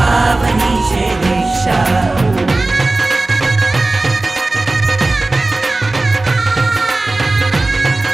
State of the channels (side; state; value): left; quieter; 3.0 dB